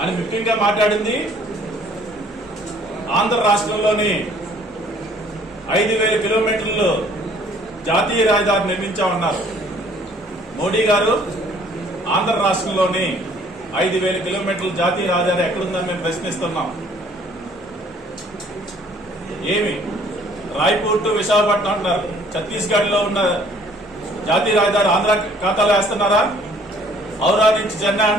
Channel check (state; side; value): normal; both; correlation 0.58